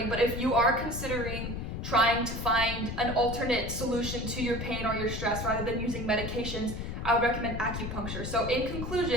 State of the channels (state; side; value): noise; left; rumble, 5 dB below the sound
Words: but if you are considering trying to find an alternate solution to your pain or your stress rather than using medications, I would recommend acupuncture. So in